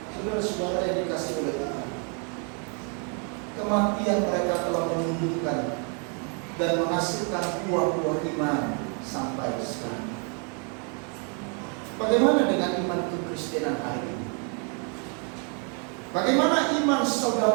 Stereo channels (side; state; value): left; quieter; 38.7 dB